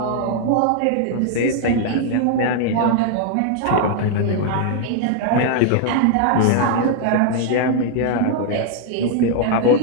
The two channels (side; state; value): both; different; correlation 0.00